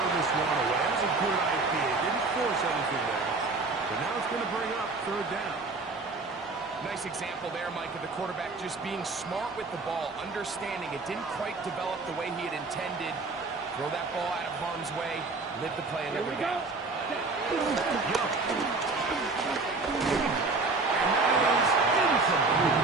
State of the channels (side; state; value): left; quieter; 3.7 dB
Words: this one away. That was a good idea. Didn't force anything there. But now it's going to bring up third down. Nice example there, Mike, of the quarterback just being smart with the ball, understanding it didn't quite develop the way he had intended. Throw that ball out of harm's way, live the play Here another we go. down. Young. And that is incomplete.